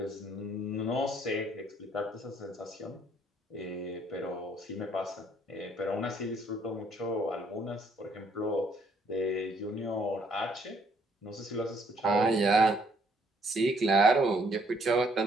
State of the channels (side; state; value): both; normal; correlation 0.66